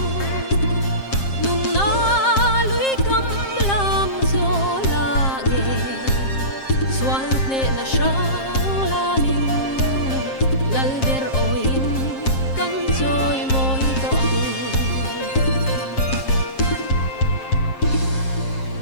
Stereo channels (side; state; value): right; late; 7.5 ms